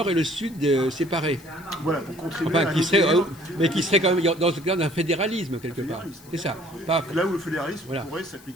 et le sud séparés. Voilà, pour contribuer Enfin, à mais qui serait quand même dans le cadre d'un fédéralisme, quelque part. C'est ça. Pas, là où le fédéralisme voilà. pourrait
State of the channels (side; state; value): left; noise; hiss, 23 dB below the sound